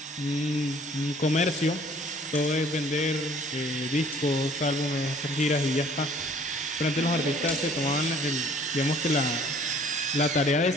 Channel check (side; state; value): both; normal; correlation 0.55